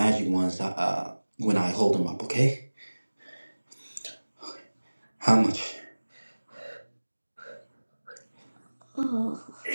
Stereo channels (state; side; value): inverted; both; correlation -1.00